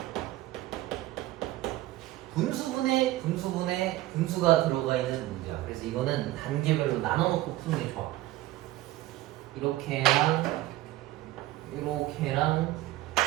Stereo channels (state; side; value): quieter; left; 16.4 dB